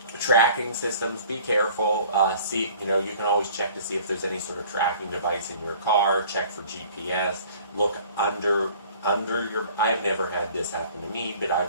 Tracking systems, be careful. You can always check to see if there's any sort of tracking device in your car. Check for GPS. Look under your. I have never had this happen to me, but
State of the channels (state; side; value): inverted; both; correlation -0.50